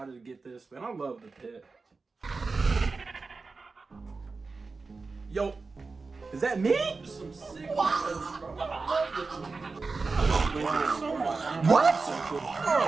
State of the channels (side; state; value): left; quieter; 4.1 dB